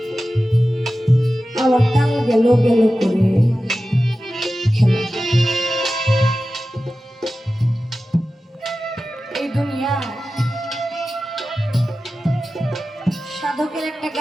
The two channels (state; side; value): normal; both; correlation 0.94